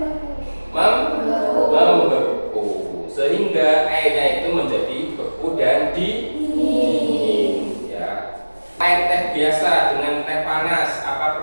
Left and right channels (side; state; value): both; inverted; correlation -1.00